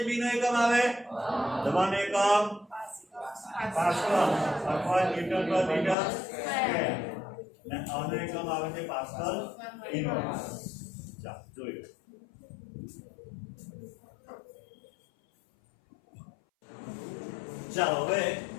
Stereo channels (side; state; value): right; drops out; at 6.0 s